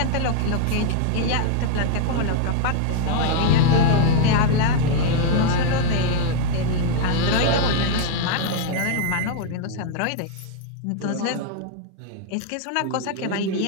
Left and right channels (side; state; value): both; different; correlation 0.00